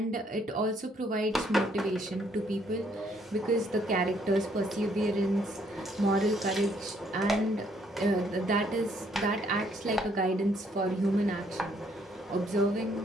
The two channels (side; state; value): both; normal; correlation 0.67